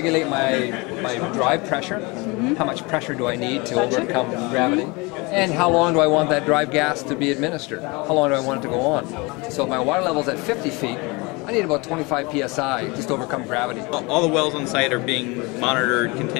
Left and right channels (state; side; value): quieter; right; 26.3 dB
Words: my drive pressure, how much pressure do I need to overcome gravity, and how long do I want that drive gas to be administered, how long do I want it to go on. So if my water level's at 50 feet, I need about 25 psi just to overcome gravity. All the wells on site are being monitored